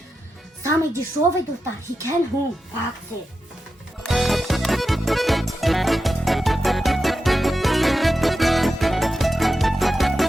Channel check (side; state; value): both; normal; correlation 0.90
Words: Самый дешевый, достар, хикен хун в акции.